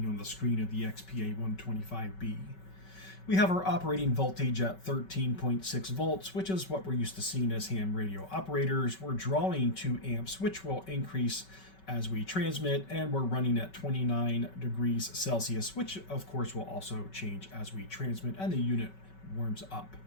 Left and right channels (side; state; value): right; late; 5.3 ms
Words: on the screen of the XPA125B. We have our operating voltage at 13.6 volts, which is what we're used to seeing as ham radio operators. We're drawing 2 amps, which will increase as we transmit, and we're running at 29 degrees Celsius, which of course will also change as we transmit and the unit warms up.